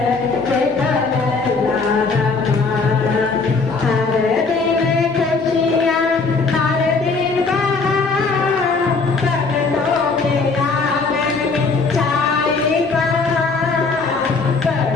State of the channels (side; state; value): right; quieter; 4.2 dB